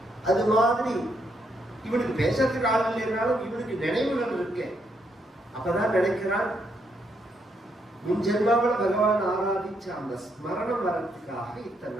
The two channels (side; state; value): both; normal; correlation 0.76